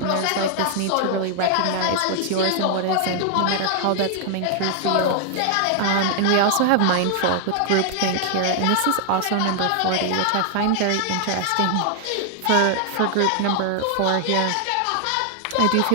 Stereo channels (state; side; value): different; both; correlation 0.00